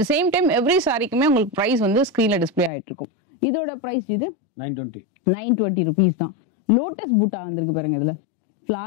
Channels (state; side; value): drops out; right; at 2.7 s